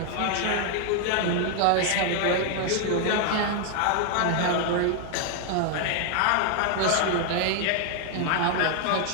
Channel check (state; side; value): different; both; correlation 0.00